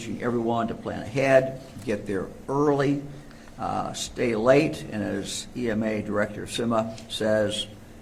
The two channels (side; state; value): both; identical; correlation 1.00